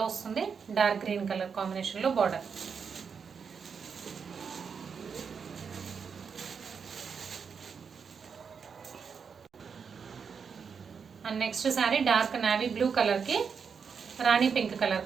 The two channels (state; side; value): quieter; left; 6.2 dB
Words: వస్తుంది. డార్క్ గ్రీన్ కలర్ కాంబినేషన్లో border. And next saree dark navy blue కలర్కి rani pink colour